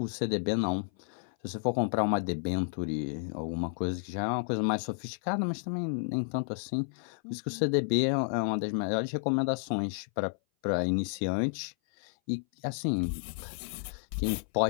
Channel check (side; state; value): right; silent; 57 dB below the other